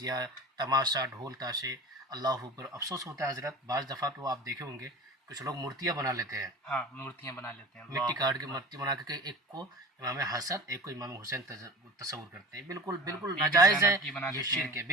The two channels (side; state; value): both; normal; correlation 0.34